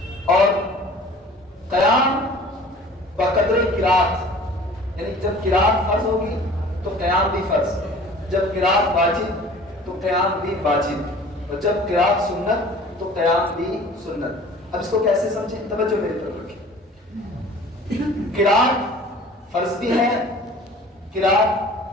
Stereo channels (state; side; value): normal; both; correlation 0.46